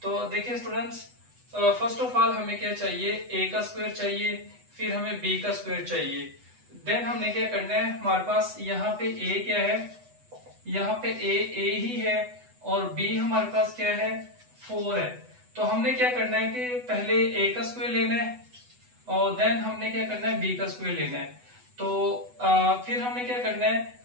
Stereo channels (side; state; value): left; late; 8.1 ms